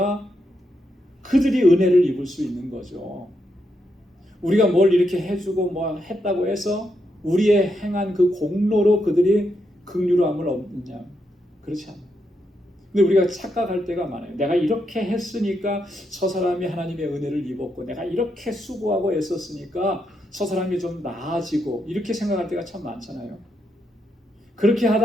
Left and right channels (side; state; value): both; normal; correlation 0.81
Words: 그들이 은혜를 입을 수 있는 거죠. 우리가 뭘 이렇게 해주고 뭐 했다고 해서 우리의 행한 그 공로로 그들이 긍휼함을 얻느냐? 그렇지 않아요. 근데 우리가 착각할 때가 많아요. 내가 이렇게 했으니까 저 사람이 하나님의 은혜를 입었고 내가 이렇게 수고하고 애썼으니까 저 사람이 좀 나아지고 이렇게 생각할 때가 참 많잖아요. 그렇게